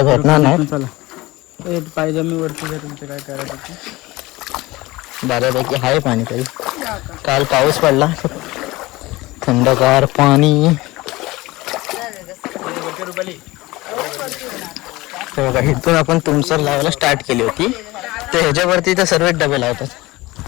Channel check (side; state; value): right; quieter; 20.3 dB